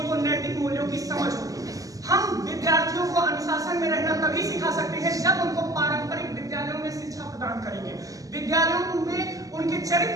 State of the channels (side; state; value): left; late; 0.17 ms